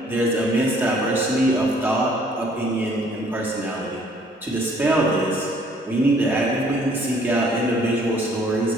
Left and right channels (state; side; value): normal; both; correlation 0.60